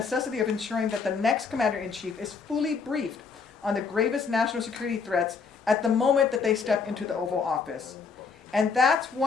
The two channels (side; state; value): right; quieter; 5.2 dB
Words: of ensuring that the next commander-in-chief is fully briefed on the gravest national security threats at the moment that they step into the Oval Office. And that's